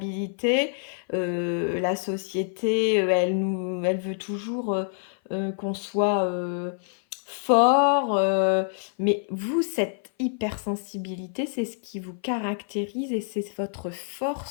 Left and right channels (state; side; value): silent; right; 57 dB below the other